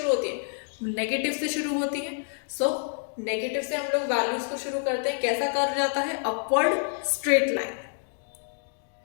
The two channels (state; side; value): silent; right; digital silence